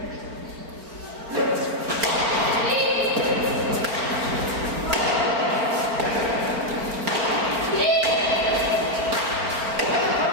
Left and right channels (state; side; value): late; left; 4.4 ms